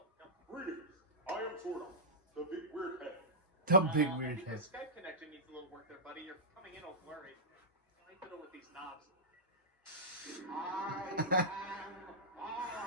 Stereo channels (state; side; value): normal; both; correlation -0.13